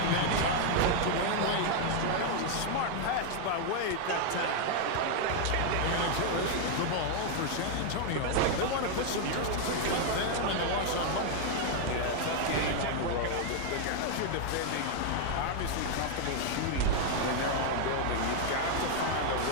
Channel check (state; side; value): different; both; correlation 0.00